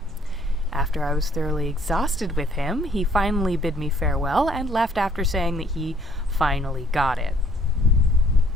After I was thoroughly exhausted with him, he finally bid me farewell and left after saying that he finally got it.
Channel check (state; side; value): normal; both; correlation 0.61